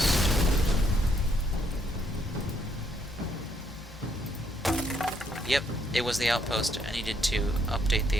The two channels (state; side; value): normal; both; correlation 0.72